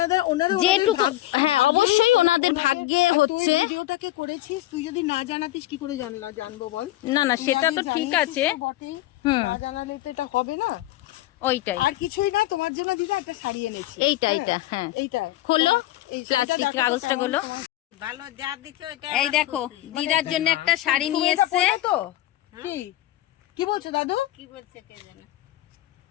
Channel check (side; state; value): right; quieter; 15.8 dB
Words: যেটুকু, হ্যাঁ অবশ্যই ওনাদের ভাগ্যে হচ্ছে। তুই ভিডিওটাকে করেছিস, তুই যদি না জানাতিস কি করে জানবো বল? না না তুই সেটা আগে তো ঠিক জানিয়েছিস আছে, তো বটেই, হুম। না জানালে তো এটা হবে না। ওইটাই, আর কিছুই না, তোমার জন্য দিদা একটা শাড়ি এনেছি। এইটা হ্যাঁ, এইটা, হ্যাঁ এইটা খোলো, এই শাড়িটা প্লাস্টিক দেখো তো কাগজটা কেমন খোলো। তোমার। ভালো যা দিছো এটা এই আমার দেখো খুশি। দিদার জন্য একটা শাড়ি তুমি নিয়ে এটা এসছে। পরবে তো? কি বলছো দাদু? কি বলছে কে জানে।